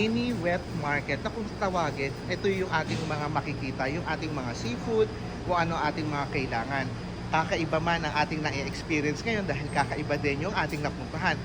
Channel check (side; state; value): both; identical; correlation 1.00